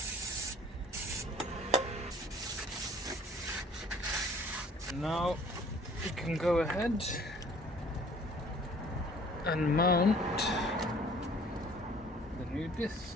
Now you can go ahead and mount the new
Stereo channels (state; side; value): normal; both; correlation 0.53